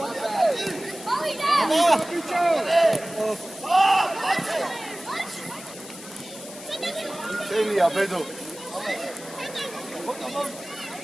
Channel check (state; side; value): noise; left; hiss, 15 dB below the sound